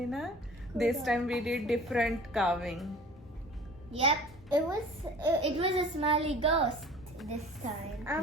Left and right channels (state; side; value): normal; both; correlation 0.45